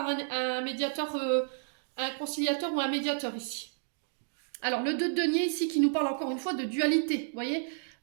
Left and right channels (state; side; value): silent; left; digital silence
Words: un médiateur, un conciliateur ou un médiateur ici. Alors, le 2 de denier ici qui nous parle encore une fois de dualité, vous voyez,